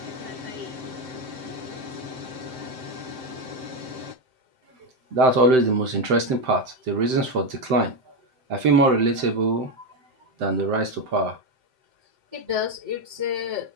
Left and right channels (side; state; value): left; late; 7.8 ms